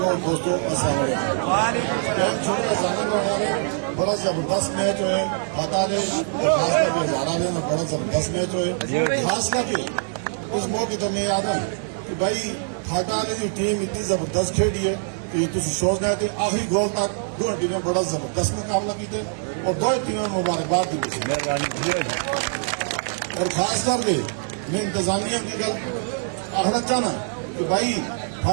दोस्तों बड़ा जबरदस्त मैच है फटा ने हजारा ने बड़ा जबरदस्त मैच है। खास करके उस मौके तो मैं याद है कि भाई फटा ने की टीम इतनी जबरदस्त खेली है कि तुम सोचना है कि आखिरी गोल तक दो टीमें बड़ा जबरदस्त मुकाबला किए और दो टीमें मुबारकबाद दी। और खास करके मैं इंतजामिया की गल आखना चाहना कि भाई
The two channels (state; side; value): silent; left; digital silence